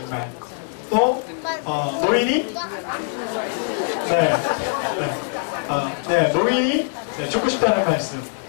또, 노인이 노인이 죽고 싶다는 말씀.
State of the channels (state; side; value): silent; right; digital silence